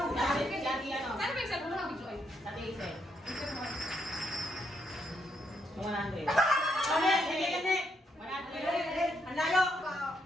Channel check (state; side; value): normal; both; correlation 0.76